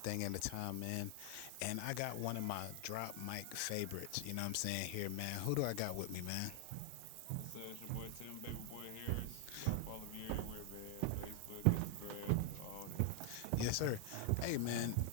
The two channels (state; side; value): different; both; correlation 0.00